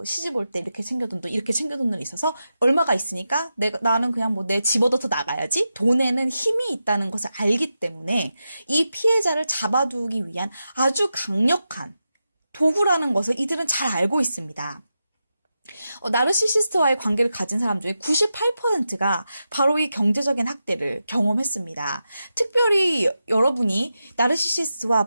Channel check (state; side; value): inverted; both; correlation -0.90